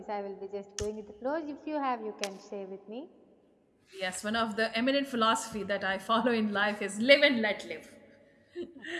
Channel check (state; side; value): identical; both; correlation 1.00